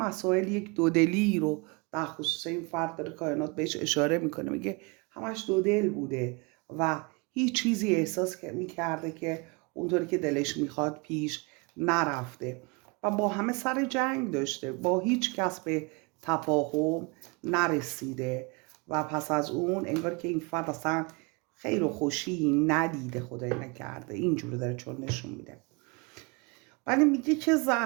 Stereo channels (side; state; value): left; quieter; 29.7 dB